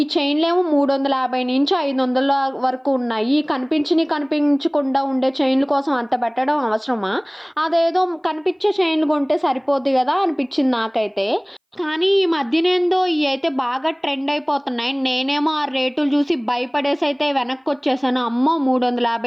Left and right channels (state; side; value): identical; both; correlation 1.00